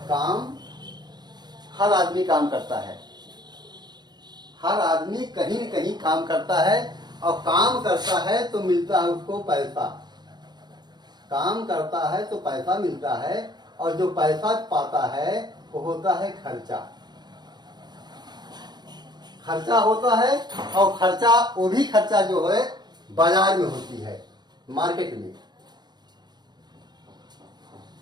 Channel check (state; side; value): late; left; 0.21 ms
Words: काम हर आदमी काम करता है, हर आदमी कहीं न कहीं काम करता है और काम करता है तो मिलता है उसको पैसा। काम करता है तो पैसा मिलता है और जो पैसा पाता है वो होता है खर्चा। खर्चा होता है और खर्चा वो भी खर्चा जो है बाजार में होती है, मार्केट में